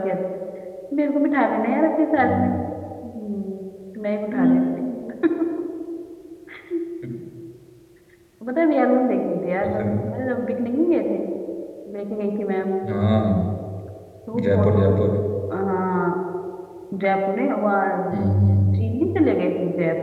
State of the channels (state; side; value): identical; both; correlation 1.00